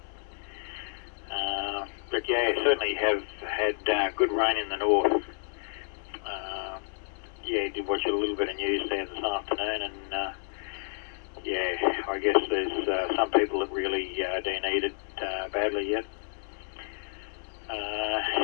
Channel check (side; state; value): right; silent; digital silence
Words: But yeah, certainly have had good rain in the north. Yeah, did watch a little bit of news there this afternoon, and yeah, I guess there's some people that really do need it badly yet.